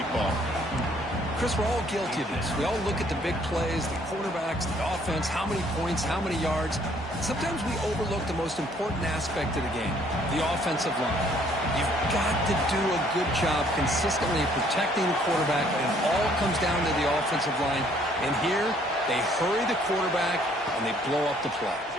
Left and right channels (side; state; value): both; normal; correlation 0.62